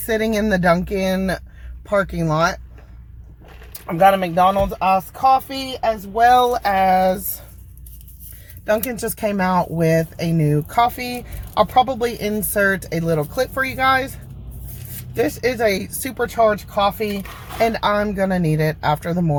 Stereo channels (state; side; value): identical; both; correlation 1.00